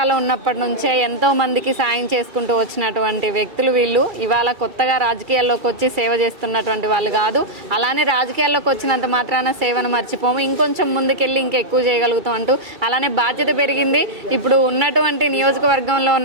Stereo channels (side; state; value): left; late; 2.3 ms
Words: ఉన్నప్పటి నుంచే ఎంతో మందికి సాయం చేసుకుంటూ వచ్చినటువంటి వ్యక్తులు వీళ్ళు. ఇవాళ కొత్తగా రాజకీయాల్లోకి వచ్చి సేవ చేస్తున్నటువంటి వాళ్ళు కాదు. అలానే రాజకీయాల్లోకి వచ్చినంత మాత్రాన సేవను మర్చిపోము, ఇంకొంచెం ముందుకెళ్ళి ఇంకా ఎక్కువ చేయగలుగుతాం అంటూ అలానే బాధ్యత పెరిగింది. ఇప్పుడు ఉన్నటువంటి నియోజకవర్గంలో